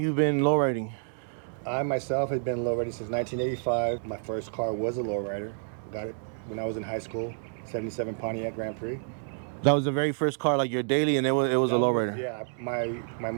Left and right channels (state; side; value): silent; left; digital silence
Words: been lowriding? I myself have been lowriding since 1985. My first car was a lowrider. Got it when I was in high school, 77 Pontiac Grand Prix. That was the very first car, like your daily, and it was a lowrider. Yeah, my